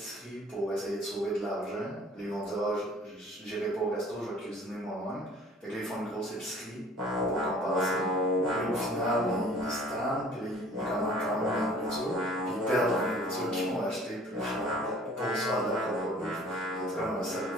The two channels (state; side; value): normal; both; correlation 0.51